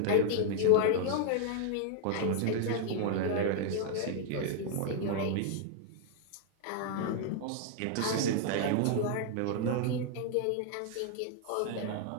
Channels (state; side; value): different; both; correlation 0.00